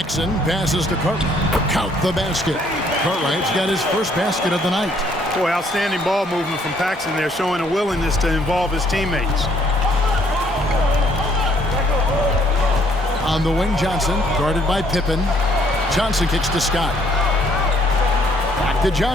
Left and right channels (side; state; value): both; normal; correlation 0.65